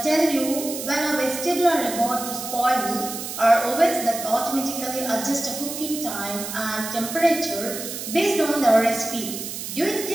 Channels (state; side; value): noise; right; hiss, 7 dB below the sound